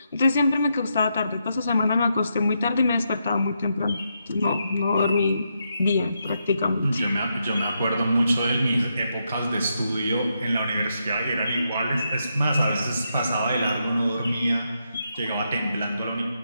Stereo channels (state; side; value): inverted; both; correlation -0.82